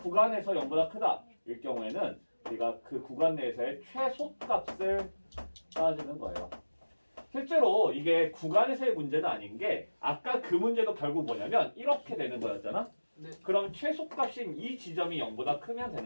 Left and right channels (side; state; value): both; inverted; correlation -1.00